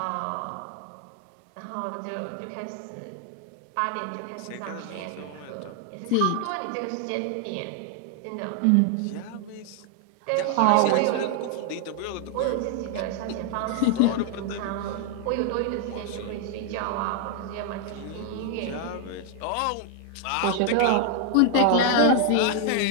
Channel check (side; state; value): both; different; correlation 0.00